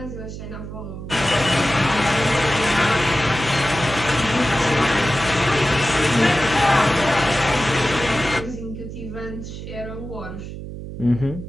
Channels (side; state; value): right; noise; hum, 10 dB below the sound